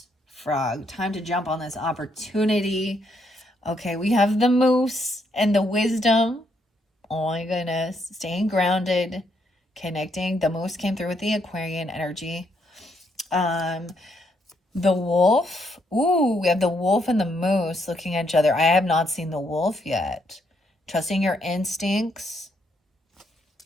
Frog. Time to jump on this opportunity. Okay, we have the moose and the wisdom. Oh my goodness. Staying grounded, connecting. The moose came through with the Aquarian energy. The wolf. Ooh, we have the wolf and the moose looking at each other. I have not seen the wolf yet. Trusting your instincts.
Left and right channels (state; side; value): normal; both; correlation 0.75